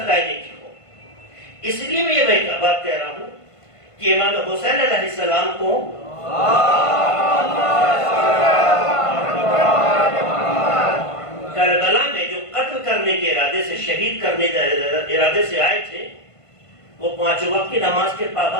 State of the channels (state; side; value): late; right; 1.5 ms